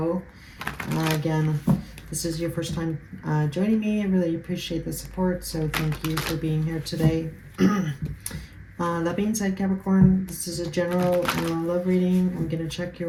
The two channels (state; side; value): identical; both; correlation 1.00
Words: Again, this is your first time joining me. I really appreciate the support, so thank you for being here today. That being said, Capricorn, this is a general love reading. I'm going to check